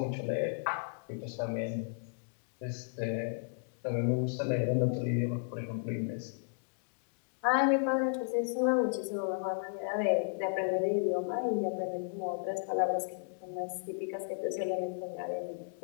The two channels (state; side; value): silent; right; digital silence